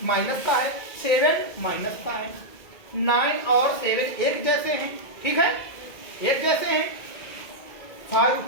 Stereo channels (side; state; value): right; late; 2.0 ms